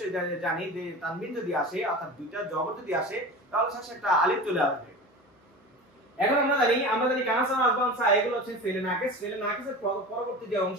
জানি যে তানবিন যদি আসে অর্থাৎ দুইটা জবর যদি আসে তাহলে শেষে একটা আলিফ চলে আসবে। এখন আমরা জানি কানা সানা আসবান সা এগুলো হচ্ছে ফেলে নাকিস। ফেলে নাকিসের পরবর্তী যে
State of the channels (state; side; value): normal; both; correlation 0.32